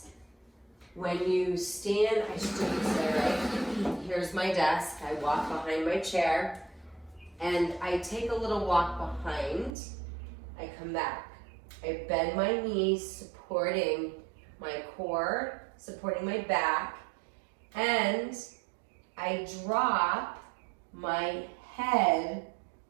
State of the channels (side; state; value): left; drops out; at 9.8 s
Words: When you stand, I should do this there, right? Here's my desk. I walk behind my chair and I take a little walk behind. I come back. I bend my knees, supporting my core, supporting my back, and I drop my head